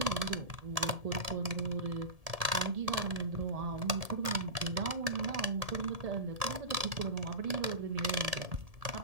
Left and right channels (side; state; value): left; late; 1.7 ms